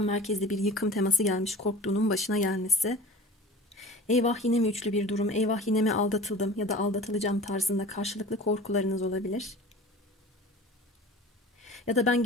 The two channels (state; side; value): normal; both; correlation 0.40